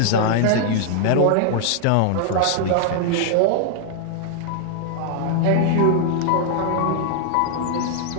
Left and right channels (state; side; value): different; both; correlation 0.00